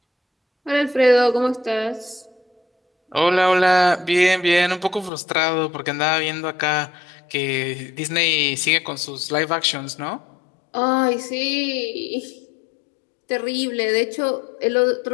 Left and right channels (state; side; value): drops out; right; at 5.1 s